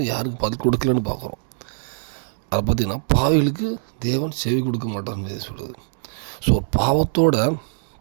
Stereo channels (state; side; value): silent; left; 63 dB below the other